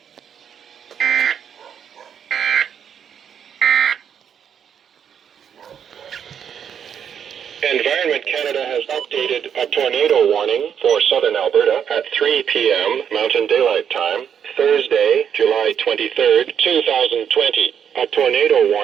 Environment Canada has updated a tornado warning for southern Alberta at 3 p.m. Mountain Daylight Time, Thursday, July 23rd, 2020. A tornado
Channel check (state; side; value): quieter; left; 8.2 dB